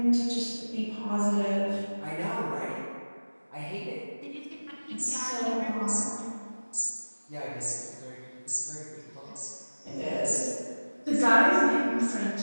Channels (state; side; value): inverted; both; correlation -1.00